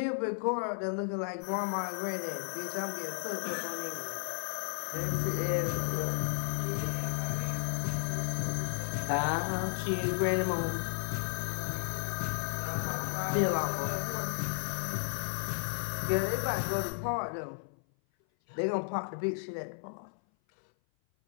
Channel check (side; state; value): right; silent; 55 dB below the other